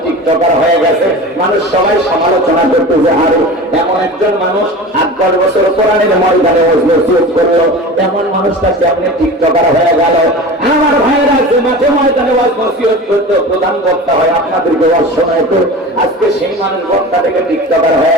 টিকটকার হয়ে গেছে। মানুষ সবাই সমালোচনা করতে যে আরে এমন একজন মানুষ 8-10 বছর কোরআনের ময়দানে ওয়াজ নসিহত করলো, এমন মানুষটাকে আপনি টিকটকার হয়ে গেল। আমার ভাইয়েরা যে মাঠে ময়দানে ওয়াজ নসিহত করতো, প্রধান বক্তা হয় আপনাদেরকে ওয়াজ শোনাইতো, আজকে সেই মানুষ বক্তা থেকে টিকটকার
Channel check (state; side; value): normal; both; correlation 0.34